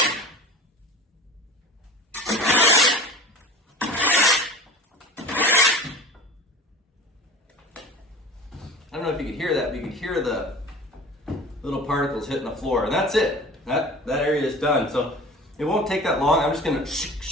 I don't know if you could hear that, but you could hear the little particles hitting the floor, and that's it. That area is done. So it won't take that long. I'm just gonna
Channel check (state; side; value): normal; both; correlation 0.40